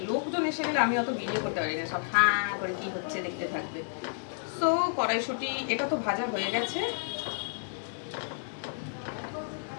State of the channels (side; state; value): right; silent; digital silence